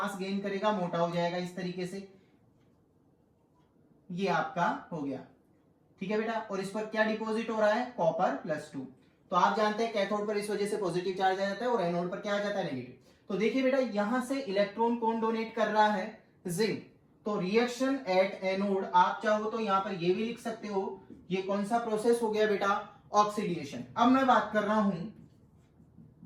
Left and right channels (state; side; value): identical; both; correlation 1.00